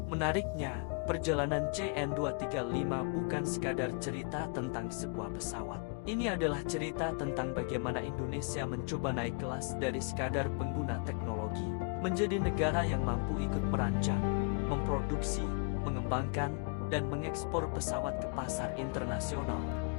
Menariknya, perjalanan CN-235 bukan sekadar cerita tentang sebuah pesawat. Ini adalah cerita tentang bagaimana Indonesia mencoba naik kelas dari sekadar pengguna teknologi, menjadi negara yang mampu ikut merancang, memproduksi, mengembangkan, dan mengekspor pesawat ke pasar internasional.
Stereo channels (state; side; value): quieter; right; 38.0 dB